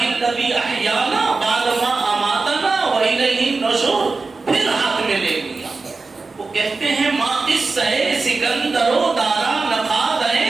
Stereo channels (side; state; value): left; quieter; 4.0 dB